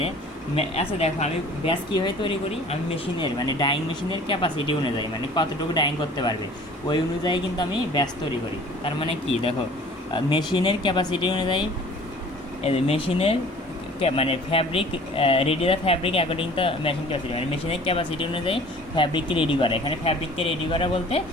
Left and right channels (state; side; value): normal; both; correlation 0.48